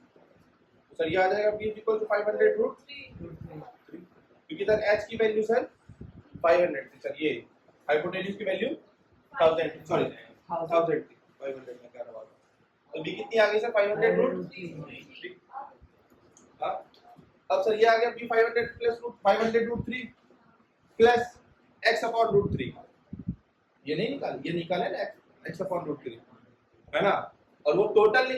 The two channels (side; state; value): both; identical; correlation 1.00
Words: सर ये आ जाएगा b इज इक्वल टू 500 √3, क्योंकि सर h की वैल्यू सर 500 थी सर, ये हाइपोटेन्यूज की वैल्यू 1000, सॉरी 1000 थी, 500 में क्या रहा। तो b कितनी आ गई सर? 500 √3। हाँ, अब सर ये आ गया b 500 plus 500 √3 plus x upon √3। ये नहीं निकाल, ये निकाले ना x अपॉन √3, है ना। और वो टोटल